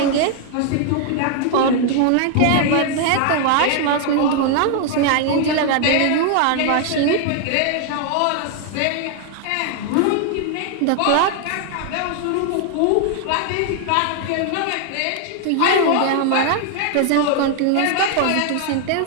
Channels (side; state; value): both; different; correlation 0.00